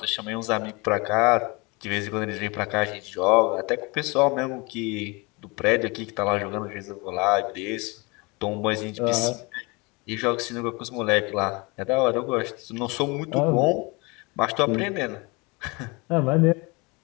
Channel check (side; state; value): right; quieter; 27.2 dB